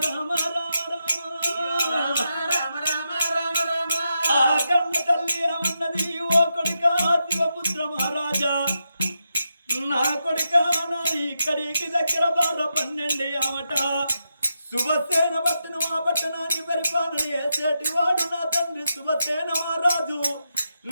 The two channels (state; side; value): inverted; both; correlation -0.85